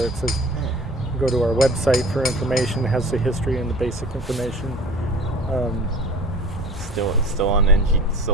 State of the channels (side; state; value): both; normal; correlation 0.43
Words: that says go to our website for information. It has the history and the basic information. Still on